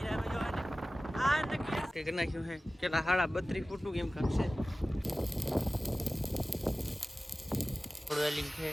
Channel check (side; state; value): both; normal; correlation 0.97